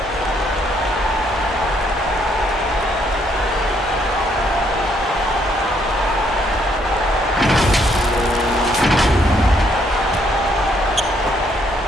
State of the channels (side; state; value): both; normal; correlation 0.70